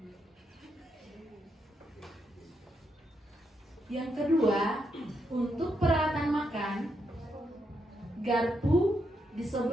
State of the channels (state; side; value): normal; both; correlation 0.80